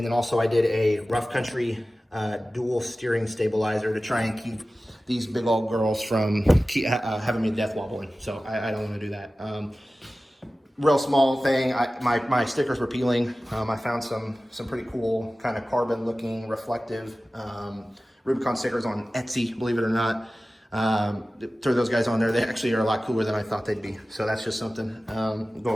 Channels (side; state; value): both; normal; correlation 0.96